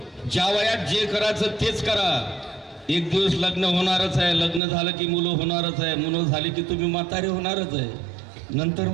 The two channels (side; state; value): left; drops out; at 4.6 s